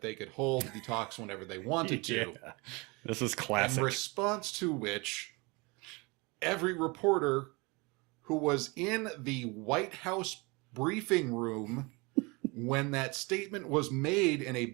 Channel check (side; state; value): left; quieter; 26.9 dB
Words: they could hold the talks whenever they wanted to. Yeah. This is classic. In response to which, every reporter who was in the White House briefing room when that statement was made in a